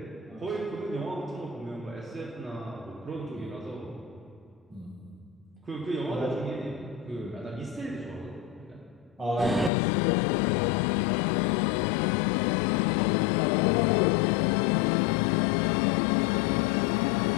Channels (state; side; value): drops out; right; at 9.7 s